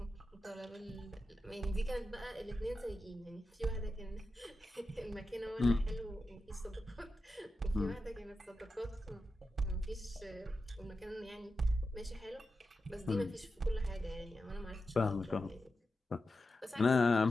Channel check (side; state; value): both; normal; correlation 0.91